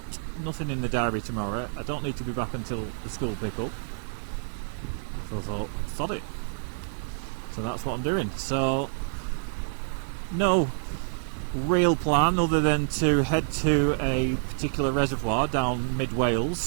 nothing in the diary tomorrow. I don't need to be back until the school pick up, so I thought, sod it. So that's what I'm doing. So no real plan other than to head to a particular reservoir down mid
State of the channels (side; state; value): left; silent; digital silence